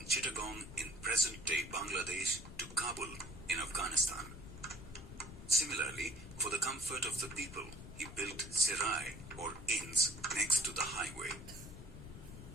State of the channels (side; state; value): left; noise; rumble, 13 dB below the sound